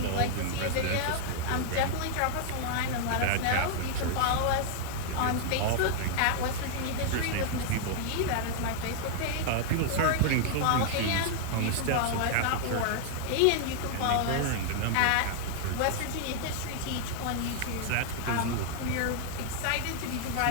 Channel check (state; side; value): different; both; correlation 0.00